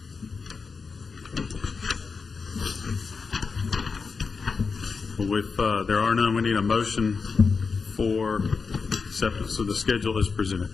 Well, if there are none, we need a motion for acceptance of the schedule as presented.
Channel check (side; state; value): right; quieter; 5.0 dB